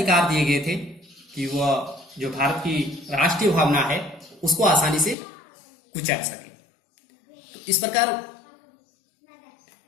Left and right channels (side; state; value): right; drops out; at 5.2 s